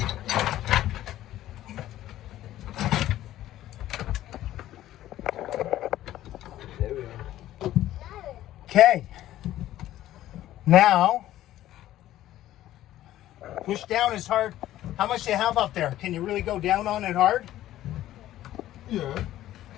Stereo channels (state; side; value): quieter; right; 13.7 dB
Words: Okay. Now, push down as hard. How much do you have up there? Can you really go down on it hard? Yeah.